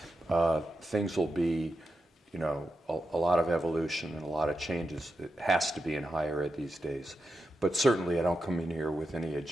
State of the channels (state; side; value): normal; both; correlation 0.88